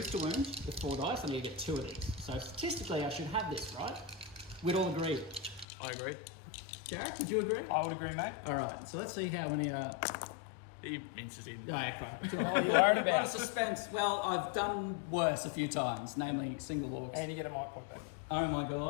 to wound with 4 dice. I need to get 2 of these. So statistically, I should have this, right? We'd all agree. I agree. Jarek, would you agree? I would agree, mate. All right, so let's see how many... He minces in. Yeah, okay. What are you worried A lot of about? suspense. Well, I've done worse a few times, namely single orcs. And you get a mic pocket. Oh my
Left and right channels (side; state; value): right; drops out; at 5.7 s